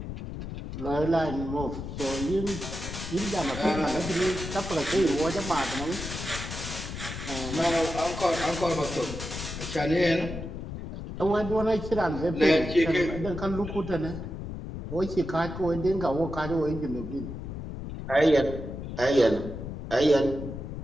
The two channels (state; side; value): noise; left; rumble, 8 dB below the sound